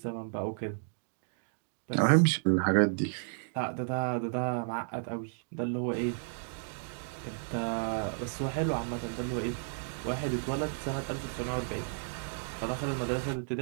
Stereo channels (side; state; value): left; silent; digital silence